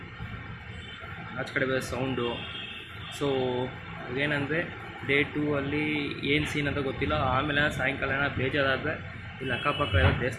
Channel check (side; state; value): both; identical; correlation 1.00